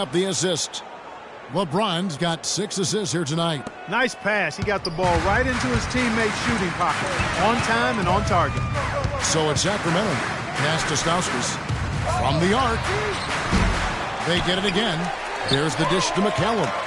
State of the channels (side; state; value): both; identical; correlation 1.00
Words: the assist. LeBron's got 6 assists here tonight. Nice pass. He got the ball right into his teammate's shooting pocket. On time and on target. So it's Sacramento. Pass to Stauskas. From the arc. They get it again. There's the dish to McCallum.